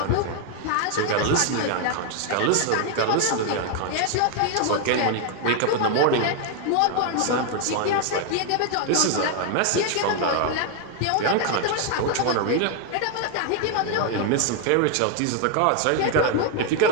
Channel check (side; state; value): both; different; correlation 0.00